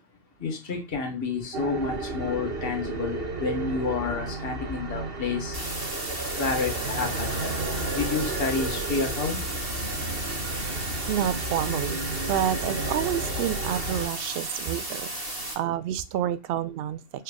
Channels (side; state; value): left; late; 2.7 ms